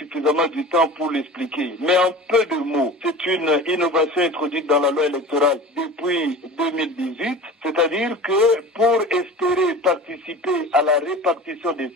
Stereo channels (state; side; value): normal; both; correlation 0.36